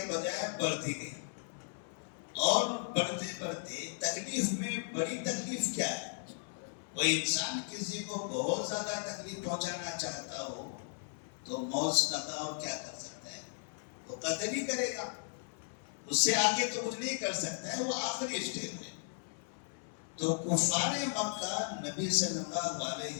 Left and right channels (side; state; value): right; silent; 54 dB below the other